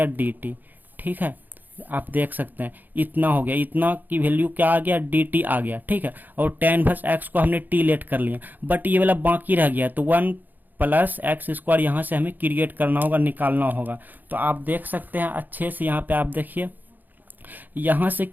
dt, ठीक है। आप देख सकते हैं इतना हो गया, इतना की वैल्यू क्या आ गया, dt आ गया, ठीक है। और tan इनवर्स x को हमने t लेट कर लिया, बट ये वाला बाकी रह गया, तो 1 + x स्क्वायर यहाँ से हमें क्रिएट करना होगा, निकालना होगा। तो आप देख सकते हैं अच्छे से, यहाँ पे आप देखिए, यहाँ से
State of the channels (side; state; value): left; late; 0.086 ms